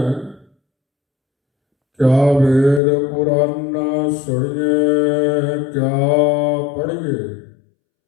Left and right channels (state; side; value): drops out; right; at 2.8 s